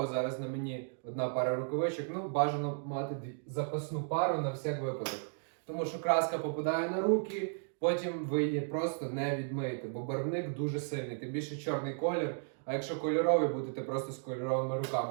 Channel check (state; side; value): silent; left; digital silence